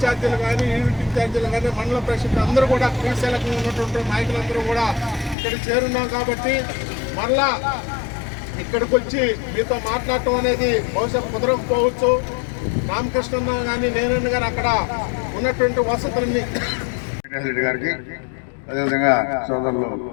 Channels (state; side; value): drops out; right; at 5.4 s